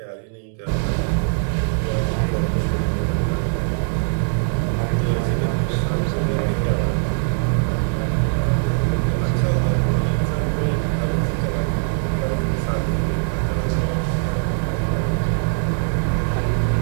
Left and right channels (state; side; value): silent; left; 62 dB below the other